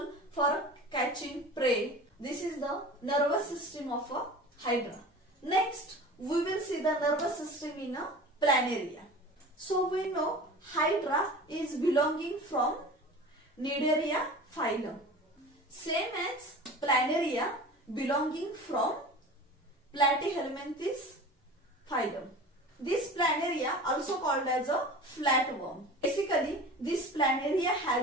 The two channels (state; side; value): normal; both; correlation 0.37